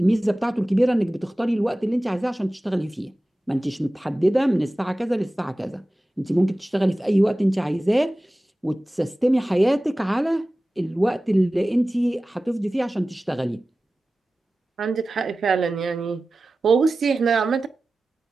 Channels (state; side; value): normal; both; correlation 0.96